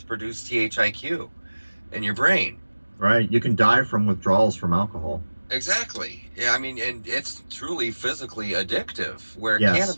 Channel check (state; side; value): inverted; both; correlation -1.00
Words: produce THIQ in your brain. Right. You can die from withdrawals from alcohol. Exactly. Yeah, I mean, and it's truly physically addictive. Where Yes.